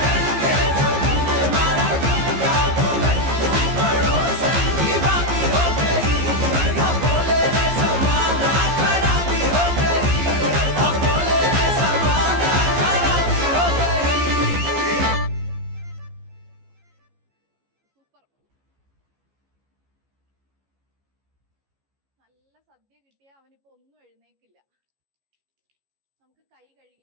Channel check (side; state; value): left; late; 15 ms